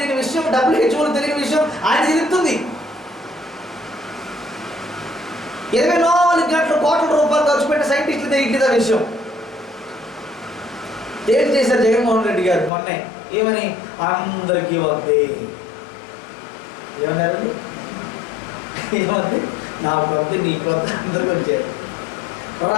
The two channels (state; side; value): drops out; right; at 12.7 s